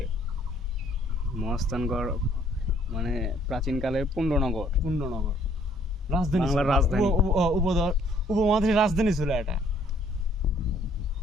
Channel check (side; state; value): both; normal; correlation 0.63